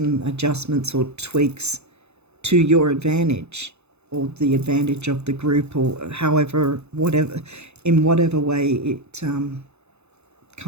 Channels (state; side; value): late; left; 0.81 ms